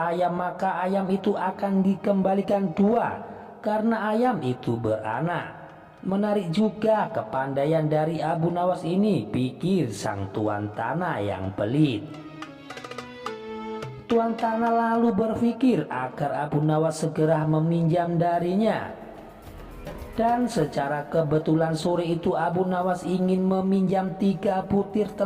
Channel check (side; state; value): both; identical; correlation 1.00